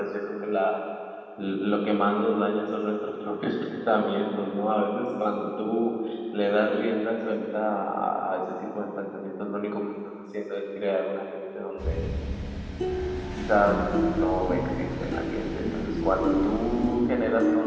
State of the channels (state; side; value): identical; both; correlation 1.00